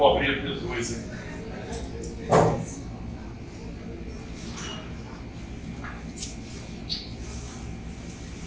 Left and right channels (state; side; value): identical; both; correlation 1.00